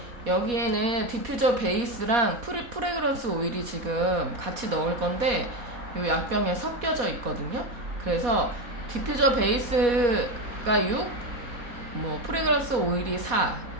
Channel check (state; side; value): late; left; 4.2 ms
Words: 여기에는 디퓨저 베이스랑 프레그런스 오일이 지금 같이 넣을 건데 이 약병에 섞여져 있거든요. 그래서 디퓨저 베이스가 6, 프레그런스 오일이 4